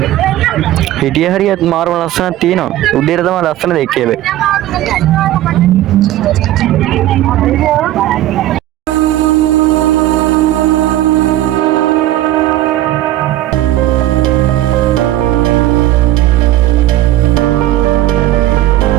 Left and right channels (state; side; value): quieter; left; 14.3 dB